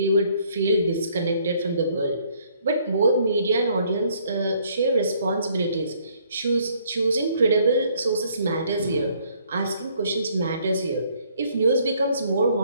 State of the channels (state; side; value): inverted; both; correlation -0.64